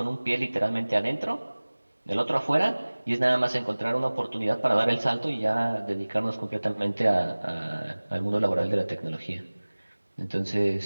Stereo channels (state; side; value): inverted; both; correlation -1.00